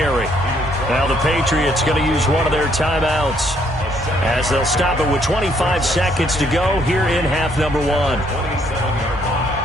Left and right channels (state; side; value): noise; left; rumble, 17 dB below the sound